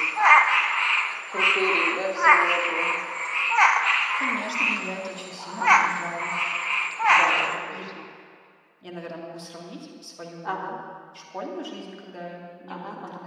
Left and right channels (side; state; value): both; identical; correlation 1.00